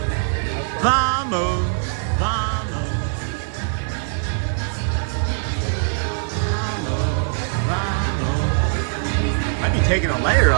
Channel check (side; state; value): left; silent; 65 dB below the other